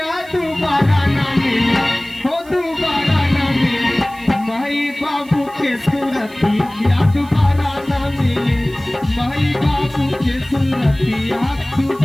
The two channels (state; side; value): noise; right; hiss, 25 dB below the sound